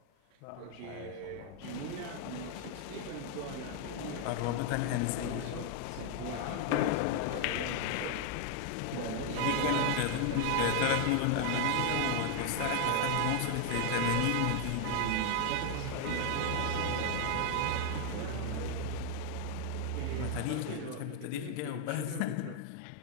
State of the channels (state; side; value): different; both; correlation 0.00